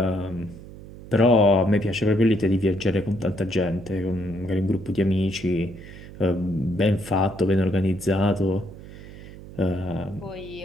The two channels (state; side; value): noise; right; hum, 16 dB below the sound